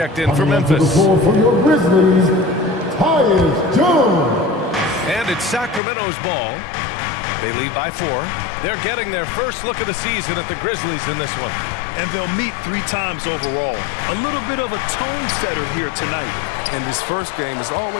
in for Memphis. For your Grizzlies, Tyus Jones. And it's Sacramento's ball. They lead by 4. They're getting their first look of the season at the Grizzlies in this one. And they'll meet 3 times overall. A little bit of a tone setter here tonight. And this first game is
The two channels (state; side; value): drops out; right; at 5.8 s